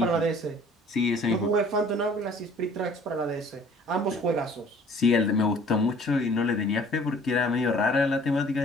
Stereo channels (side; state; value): both; normal; correlation 0.53